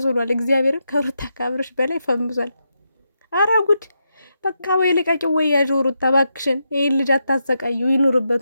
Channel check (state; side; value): inverted; both; correlation -0.85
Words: ሆኗል። እግዚአብሔርን ከሩታ ከአብርሽ በላይ ፈምሷል። አረ ጉድ! በቃ ወይ ልቀቂው ወይ ያዥው ሩታ እባክሽን። ይሄን ልጅ አታሰቃዩ፣